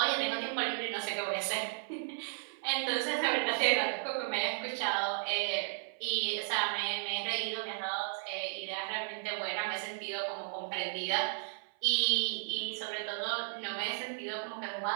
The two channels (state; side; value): silent; left; 55 dB below the other